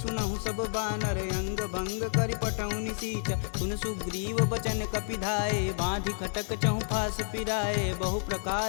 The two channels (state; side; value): silent; right; 58 dB below the other